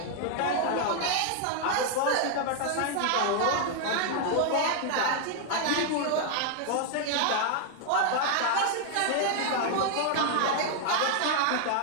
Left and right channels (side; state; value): both; different; correlation 0.00